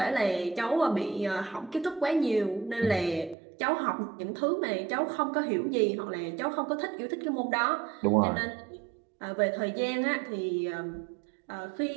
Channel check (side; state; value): left; drops out; at 3.4 s